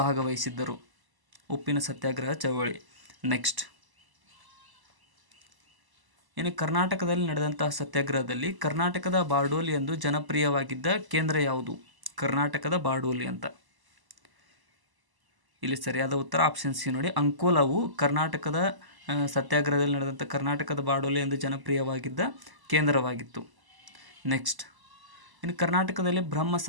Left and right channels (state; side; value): late; left; 1.0 ms